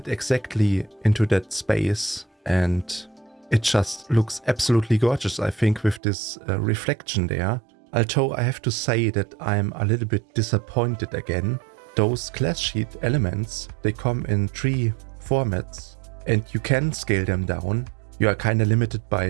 exactly into that space, and it just looks absolutely gorgeous, I think, with this reflection there. Although I have to say that I'm a little bit disappointed again. Those class sheet elements, they come in 3 formats, and you can scale them down. You are kind of limited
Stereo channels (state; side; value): drops out; left; at 6.0 s